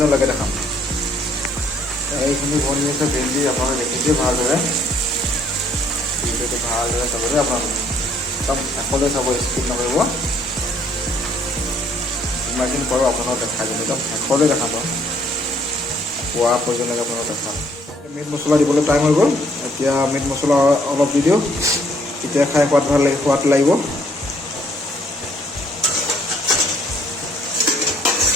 দেখাম এইখিনি বনি আছে ভেন্দি আপোনালোকে দেখিছে ভালদৰে ভিডিঅ'টো ভালদৰে চাব দেই আপোনালোকে একদম শেষলৈ চাব স্কিপ নকৰিব যিমানখিনি পাৰোঁ আপোনালোক দেখাই দিম একদম শেষলৈ দেখাব খোৱা পৰ্যন্তলৈকে আপোনালোক দেখাম মিট মছলা দিবলৈ টাইম হৈ গ'ল এতিয়া মিট মছলা অলপ দি দিওঁ তেতিয়া খাই সোৱাদ লাগিব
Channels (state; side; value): normal; both; correlation 0.64